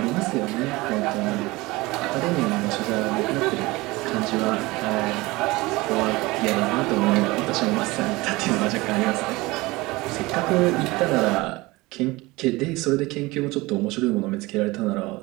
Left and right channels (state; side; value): quieter; left; 21.6 dB